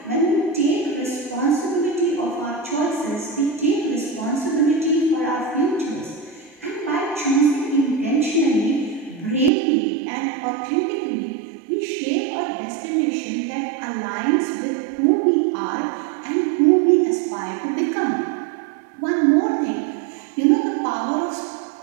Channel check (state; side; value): drops out; left; at 9.5 s